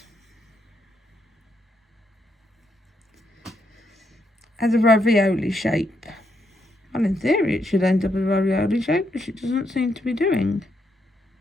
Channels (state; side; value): normal; both; correlation 0.78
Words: a ravioli shape. Well, in theory it should end up as a ravioli shape, which it doesn't seem to be doing.